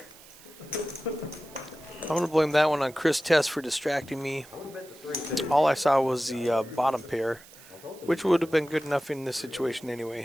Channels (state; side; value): noise; right; hiss, 21 dB below the sound